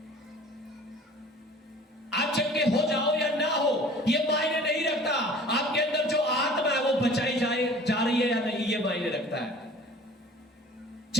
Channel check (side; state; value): both; normal; correlation 0.47